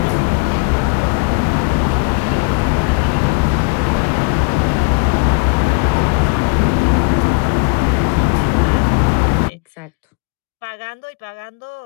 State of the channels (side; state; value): right; quieter; 36.1 dB